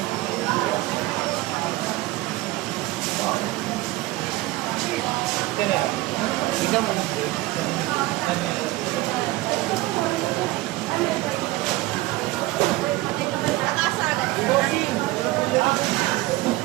Ito na yan. Ikaw mo.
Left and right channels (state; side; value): quieter; left; 18.9 dB